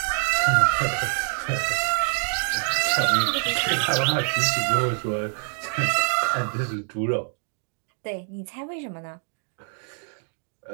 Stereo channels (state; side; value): silent; left; 55 dB below the other